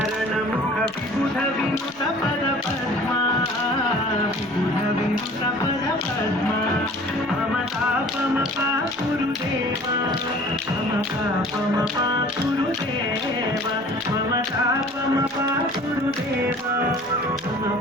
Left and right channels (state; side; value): noise; left; rumble, 28 dB below the sound